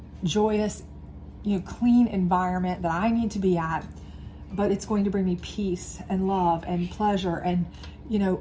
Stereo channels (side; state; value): both; identical; correlation 1.00